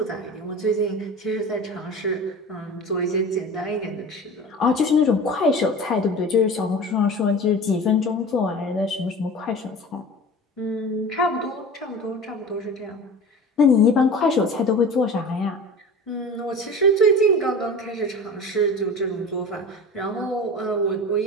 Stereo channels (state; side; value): normal; both; correlation 0.35